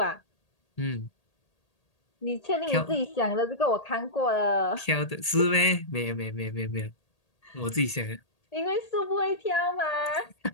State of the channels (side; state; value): right; late; 1.8 ms